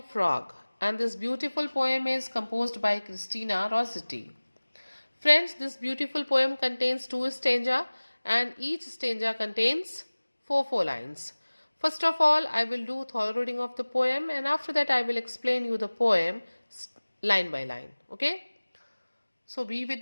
Frog, and this beautiful poem is composed by Christina Rossetti. Friends, this beautiful poem contains 2 stanza and each stanza contains 4 lines. First of all, I will do thorough reading of the poem and after that I will explain you the poem line by line. Okay? So be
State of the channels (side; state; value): both; inverted; correlation -1.00